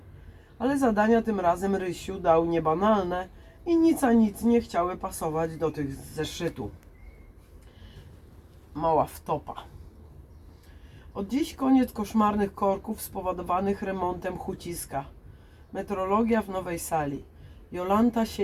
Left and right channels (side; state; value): both; identical; correlation 1.00